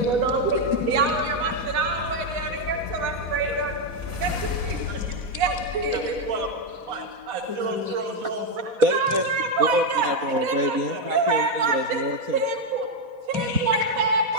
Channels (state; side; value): late; left; 4.1 ms